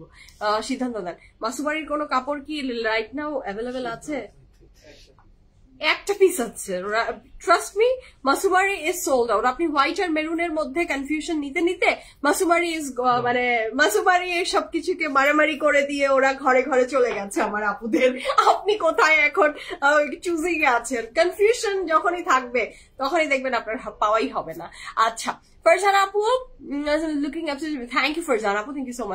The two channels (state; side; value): identical; both; correlation 1.00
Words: সিদ্ধান্ত দেন। মাসুমারির কোনো কাপড় কি রাইট নাও অ্যাভেলেবেল আছে? একটা পিস আছে, trust me, Mausummery is sold out. আপনি হোয়াইট আর মেরুনের মধ্যে কনফিউশন নিতে নিতে মাসুমারি ইজ মানে মাসুমারি সবকিছুকে মারামারি করে দিয়ে ওরা ঘরে ঘরে চলে গেছে আমার আপুদের। আপনি কোথায় এখন চুজিং এ আছেন? কনফিউশন যখনই থাকবে তখনই দেখবেন আপনার পাওয়াই হবে না। আচ্ছা, ফারজানা আপু, looking absolutely, thank you Farzana আপু, থ্যাংক ইউ সো